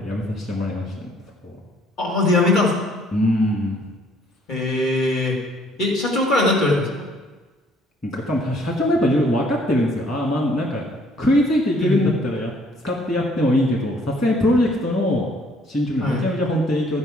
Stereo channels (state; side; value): normal; both; correlation 0.61